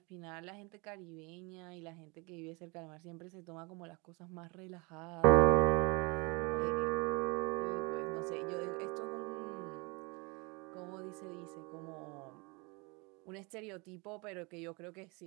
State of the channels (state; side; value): quieter; left; 28.8 dB